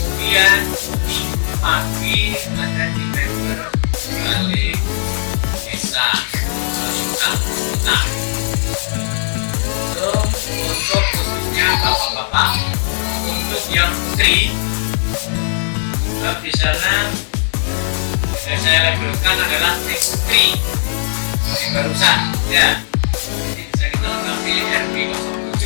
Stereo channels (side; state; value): right; silent; 68 dB below the other